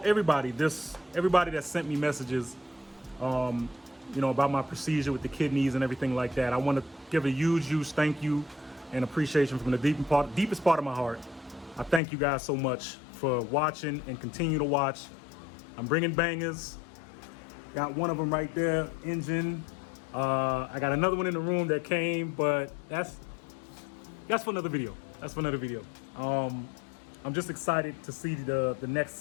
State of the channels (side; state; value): right; drops out; at 12.0 s